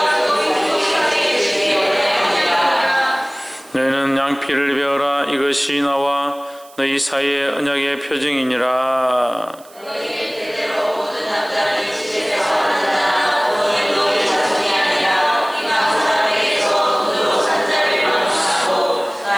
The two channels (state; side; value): noise; right; hiss, 25 dB below the sound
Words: 너희는 양피를 베어라. 이것이 나와 너희 사이의 언약의 표징이니라.